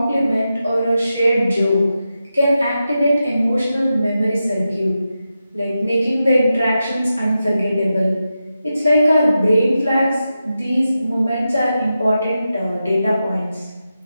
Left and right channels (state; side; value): inverted; both; correlation -0.90